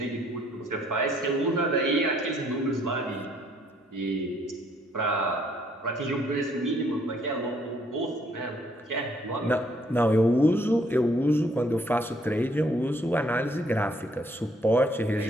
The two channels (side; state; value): both; normal; correlation 0.67